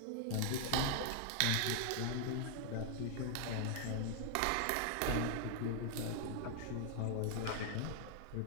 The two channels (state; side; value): different; both; correlation 0.00